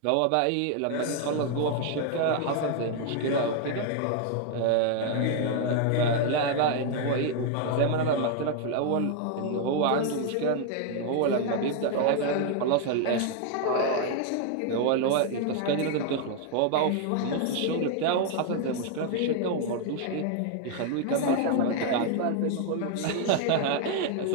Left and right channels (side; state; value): both; different; correlation 0.00